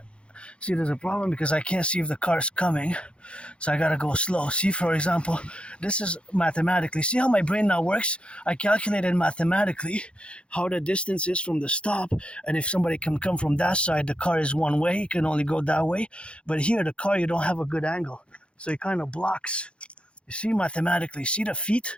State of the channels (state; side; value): late; right; 0.058 ms